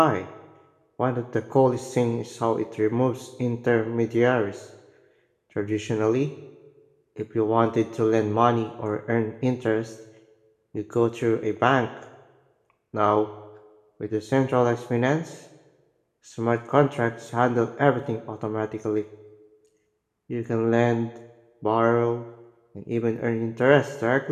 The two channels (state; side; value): identical; both; correlation 1.00